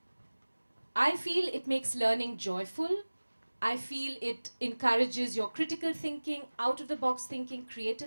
I feel it makes learning joyful. I feel it encourages your critical thinking, out-of-the-box thinking,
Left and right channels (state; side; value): inverted; both; correlation -1.00